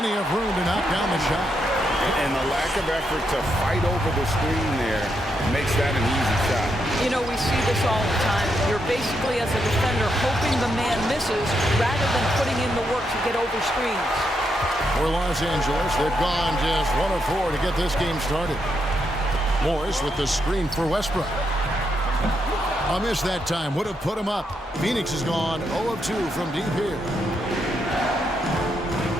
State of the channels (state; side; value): normal; both; correlation 0.80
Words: of room to knock down the shot. And the lack of effort to fight over the screen there makes that an easy shot. You know, we see this all the time. You're basically, as a defender, hoping the man misses rather than putting in the work to get over screens. For Los Angeles, they've gone just 1 of 4 to get this game started. Morris with the screen for Westbrook. A miss that time would have put him up. Phoenix has gone 0 of 2 from deep here.